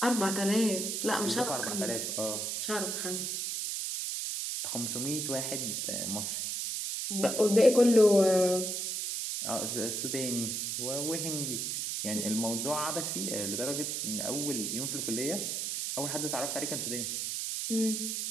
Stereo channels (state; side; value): noise; right; hiss, 2 dB below the sound